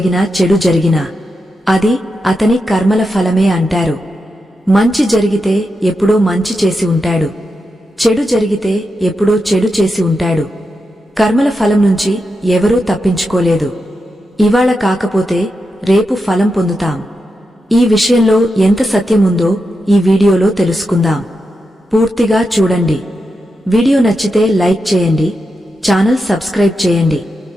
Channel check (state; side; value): normal; both; correlation 0.87